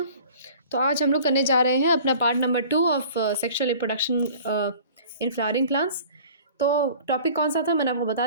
तो आज हम लोग करने जा रहे हैं अपना part number 2 of sexual reproduction in flowering plants. तो टॉपिक कौन सा था मैंने आपको बता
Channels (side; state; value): both; inverted; correlation -0.46